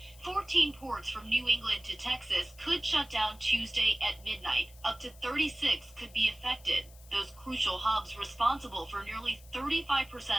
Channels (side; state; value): left; noise; hiss, 23 dB below the sound